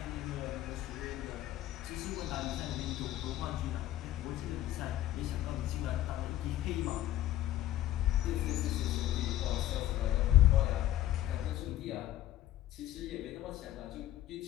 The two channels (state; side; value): quieter; right; 13.5 dB